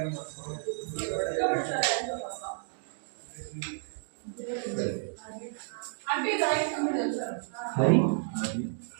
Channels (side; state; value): left; silent; digital silence